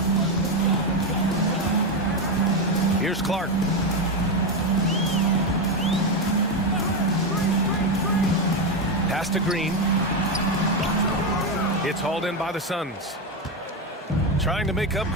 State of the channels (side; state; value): both; normal; correlation 0.10